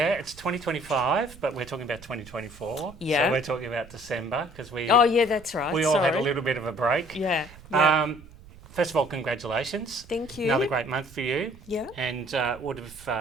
it's 2025, but we're talking about 2024. Yeah. So we're talking about December because Oh yeah, that's right. we all had a little bit of a break. Yeah. First of all, congratulations. Thank you. Another great month for you. Yeah. And would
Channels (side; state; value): right; noise; rumble, 20 dB below the sound